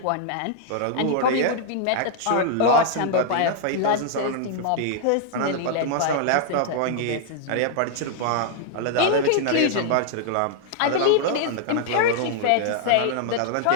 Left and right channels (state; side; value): different; both; correlation -0.01